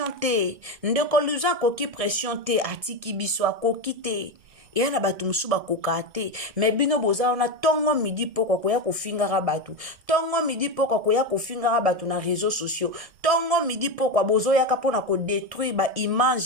te ndeko Louison koki pression te atiki biso akoki te yana batu musu bakoka te mais bino boza na tongo midi poko koya kofingaka batu tongo midi poko koya kofingaka batu na réseaux sociaux tongo midi poko bozo yaka pona ko détruire ba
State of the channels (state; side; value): late; left; 1.7 ms